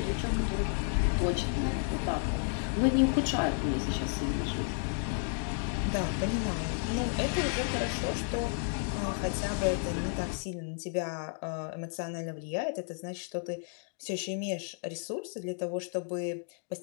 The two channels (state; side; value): silent; right; 56 dB below the other